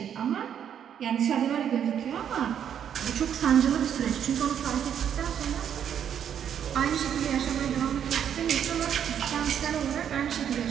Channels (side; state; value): left; quieter; 8.9 dB